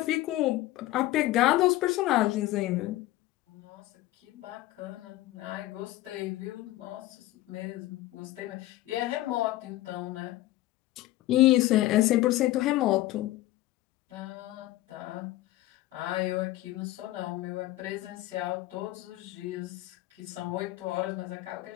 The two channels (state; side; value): quieter; right; 16.6 dB